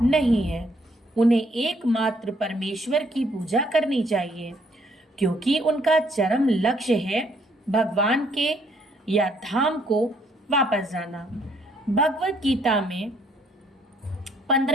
नहीं है। उन्हें एकमात्र परमेश्वर की पूजा करनी चाहिए, क्योंकि उनका चरम लक्ष्य है भगवान के या धाम को वापस जाना। भगवत गीता में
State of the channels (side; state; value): both; normal; correlation 0.67